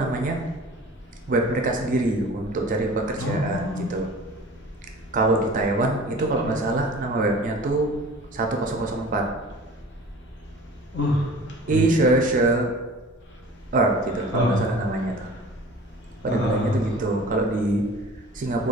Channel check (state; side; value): normal; both; correlation 0.43